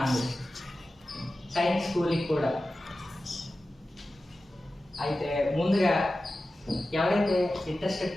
Science స్కూల్కి కూడా. అయితే ముందుగా ఎవరైతే ఇంట్రెస్టెడ్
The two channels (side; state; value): both; normal; correlation 0.94